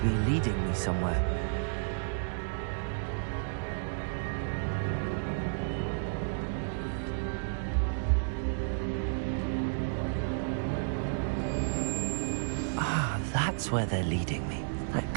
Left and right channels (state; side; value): silent; left; digital silence